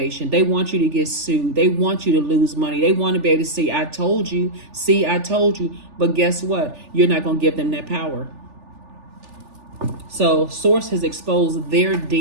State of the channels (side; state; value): left; late; 3.4 ms